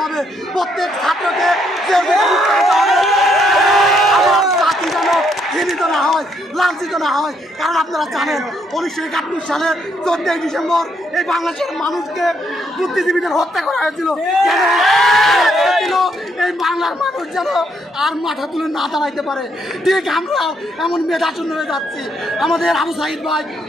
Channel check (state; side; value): normal; both; correlation 0.73